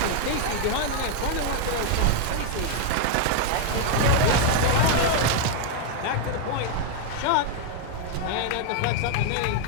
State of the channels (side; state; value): both; different; correlation 0.00